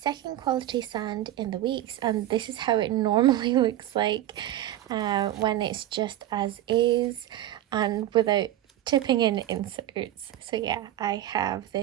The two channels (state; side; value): quieter; left; 13.4 dB